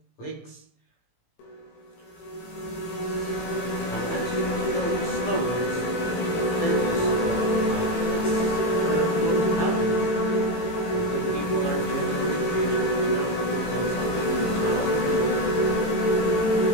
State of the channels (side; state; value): right; late; 18 ms